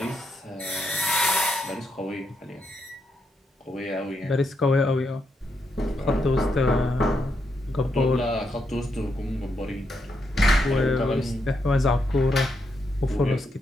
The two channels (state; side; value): normal; both; correlation 0.81